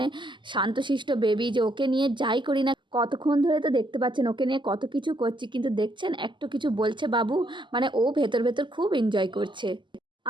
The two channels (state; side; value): late; left; 0.23 ms